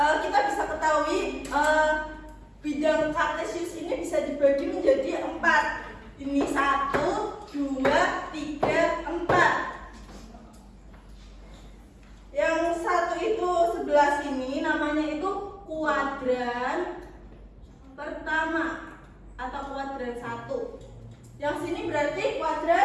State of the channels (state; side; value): identical; both; correlation 1.00